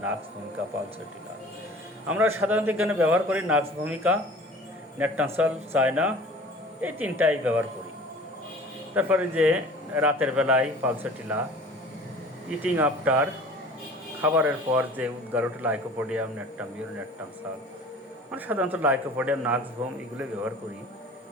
নাক্স ভূমিকা, পালসেটিলা। আমরা সাধারণত এখানে ব্যবহার করি নাক্স ভূমিকা, ন্যাট্টাম সালফ, চায়না, এই তিনটাই ব্যবহার করি। তারপরে যে রাতের বেলায় পালসেটিলা, ইটিং আফটার, খাবারের পর যে উদ্গারটা লাইকোপোডিয়াম, ন্যাট্টাম ইউর, ন্যাট্টাম সালফ। আমরা সাধারণত লাইকোপোডিয়াম, নাক্স ভোম এগুলো ব্যবহার করি।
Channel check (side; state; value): both; normal; correlation 0.44